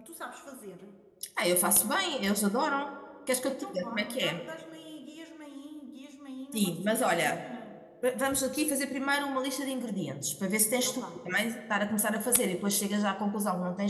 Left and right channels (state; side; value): identical; both; correlation 1.00